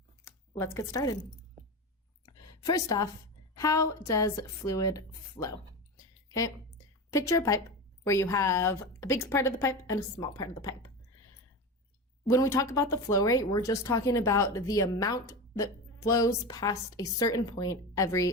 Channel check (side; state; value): both; normal; correlation 0.23